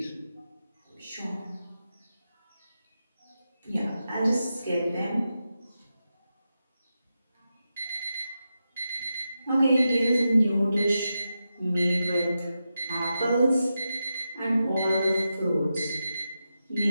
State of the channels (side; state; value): both; inverted; correlation -0.89